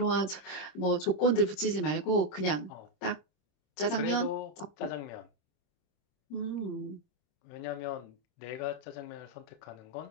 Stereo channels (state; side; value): late; right; 26 ms